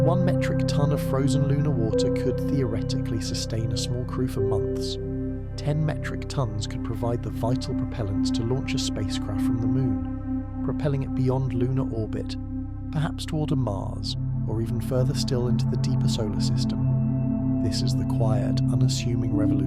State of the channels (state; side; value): identical; both; correlation 1.00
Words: metric ton of frozen lunar water could theoretically sustain a small crew for months. 10 metric tons could provide the vital propellants to launch a spacecraft from the Moon, propelling it beyond lunar orbit, perhaps toward a Mars, or even further still into the deeper solar system. This is the quiet, unassuming